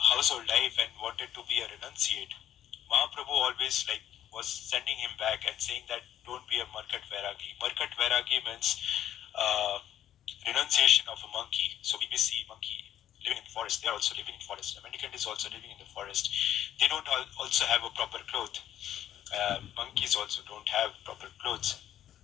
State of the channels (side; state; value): right; quieter; 11.3 dB